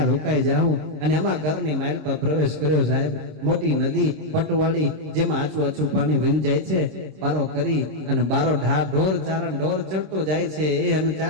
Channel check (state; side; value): late; left; 26 ms